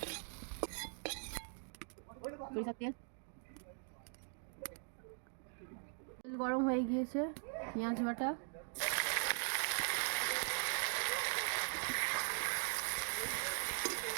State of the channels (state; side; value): silent; left; 50 dB below the other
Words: তেল গরম হয়ে গিয়েছে, পেঁয়াজ বাটা,